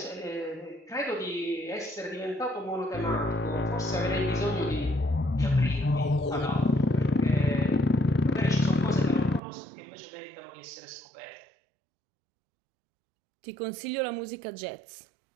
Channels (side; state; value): left; drops out; at 9.4 s